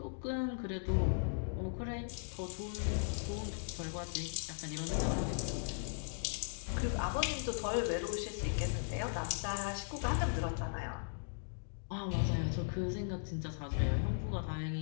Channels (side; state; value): right; silent; digital silence